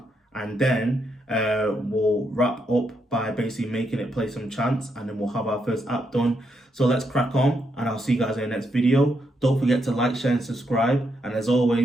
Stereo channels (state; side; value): normal; both; correlation 0.80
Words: and then we'll wrap up by basically making it play some chants, and then we'll have our first app done. So let's crack on, and I'll see you guys in the next video. Don't forget to like, share, and subscribe. And as